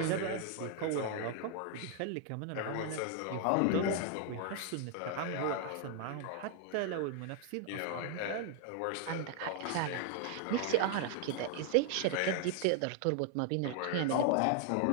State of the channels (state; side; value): different; both; correlation 0.00